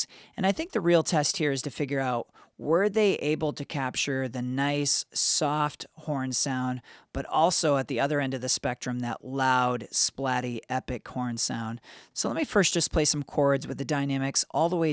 and I think the real test here is to figure out, were they able to capture the nice, soft horn sound, but also at the other end of the spectrum, that loud, splatty, epic horn sound. So let me first just play some chords with the dynamics all the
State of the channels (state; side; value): identical; both; correlation 1.00